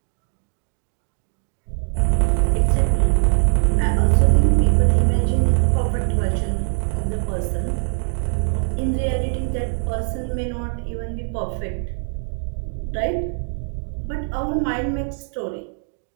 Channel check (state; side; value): silent; left; digital silence